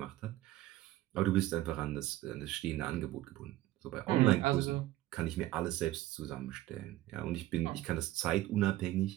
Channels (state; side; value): quieter; left; 15.4 dB